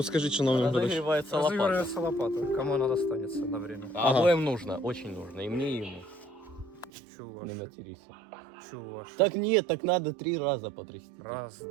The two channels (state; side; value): drops out; left; at 6.9 s